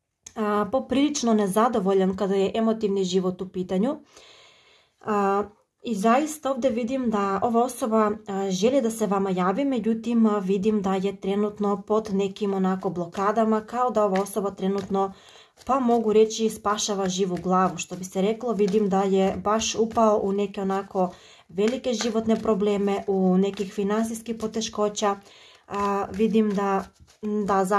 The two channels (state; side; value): identical; both; correlation 1.00